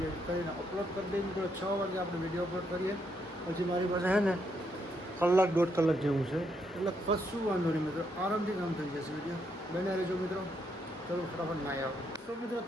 એડિટ કરીને અપલોડ કરી દઈએ મિત્રો. 6 વાગે આપણે વિડીયો અપલોડ કરીએ. પછી મારી પાસે છે ને કલાક 1.5 કલાક જેવું છે એટલે કશું વાંધો નહીં મિત્રો. આરામથી કામ થઈ જશે. વિડીયો બને રહેજો મિત્રો. ચલો ફટાફટ નાહી આવો. તો મિત્રો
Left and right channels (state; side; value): normal; both; correlation 0.76